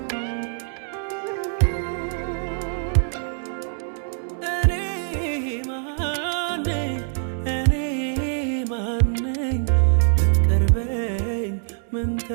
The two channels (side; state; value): left; silent; 63 dB below the other